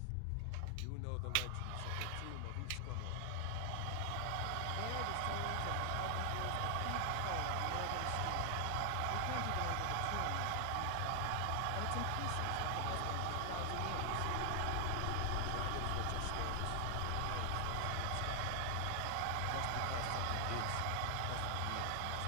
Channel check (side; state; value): both; different; correlation 0.00